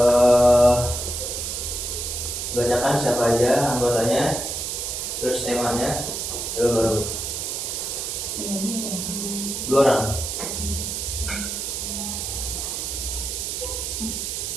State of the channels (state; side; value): noise; right; hiss, 3 dB below the sound